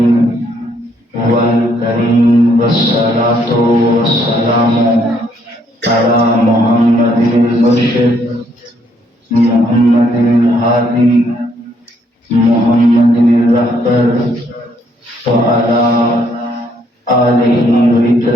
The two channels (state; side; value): normal; both; correlation 0.70